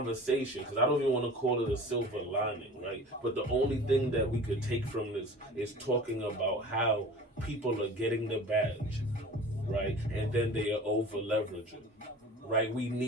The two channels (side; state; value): both; normal; correlation 0.40